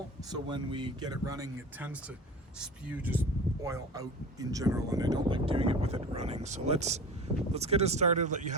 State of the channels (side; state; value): both; normal; correlation 0.35